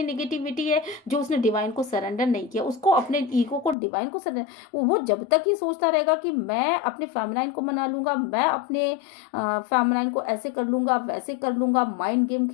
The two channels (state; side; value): drops out; right; at 3.8 s